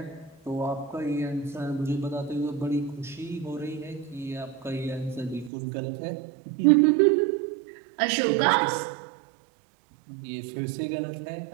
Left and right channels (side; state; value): left; drops out; at 5.5 s